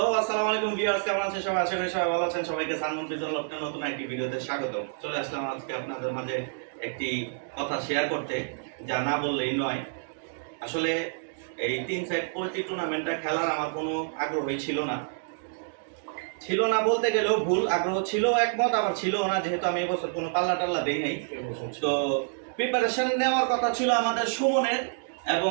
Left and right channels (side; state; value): left; silent; digital silence